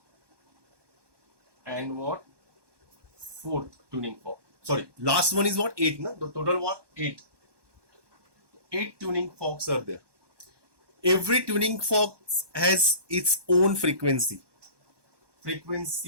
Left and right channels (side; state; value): left; late; 1.2 ms